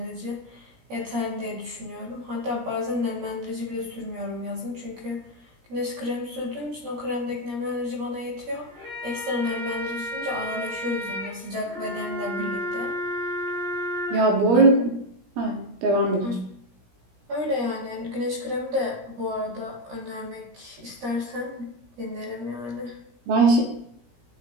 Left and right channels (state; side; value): late; left; 17 ms